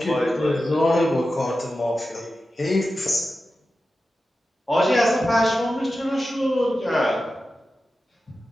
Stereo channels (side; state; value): both; normal; correlation 0.93